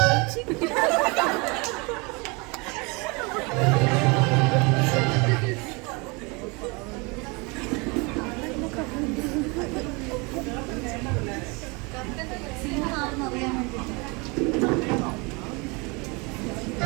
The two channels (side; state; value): left; quieter; 28.5 dB